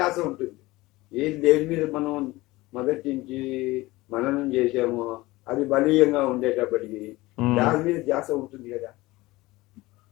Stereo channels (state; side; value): quieter; right; 19.8 dB